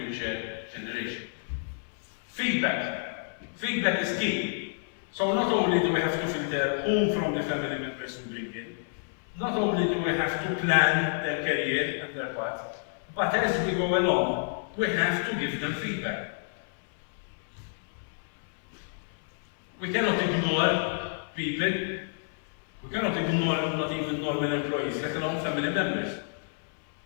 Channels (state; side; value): silent; right; 58 dB below the other